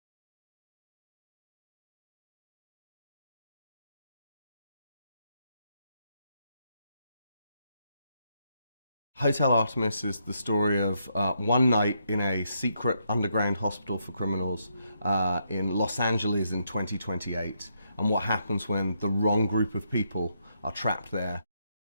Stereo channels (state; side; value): inverted; both; correlation -0.77